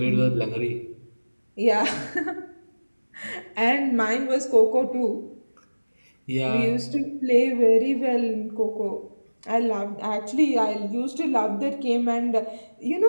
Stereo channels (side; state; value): both; inverted; correlation -1.00